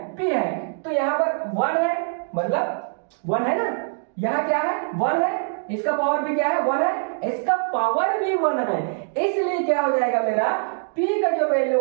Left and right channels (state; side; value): silent; left; digital silence